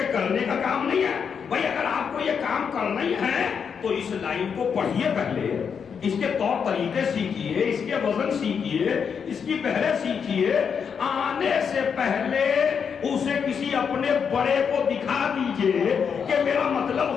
کرنے کا کام نہیں ہے. بھائی اگر آپ کو یہ کام کرنا ہی ہے تو اس لائن کو پڑھیے, پہلے اس کے طور طریقے سیکھیے, اس کے وزن سیکھیے, اس کی پہلے سیکھیے. آنے سے پہلے اسے کسی اپنے بڑے کو دکھا دیجئے کہ میرا مطلب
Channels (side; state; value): right; quieter; 6.7 dB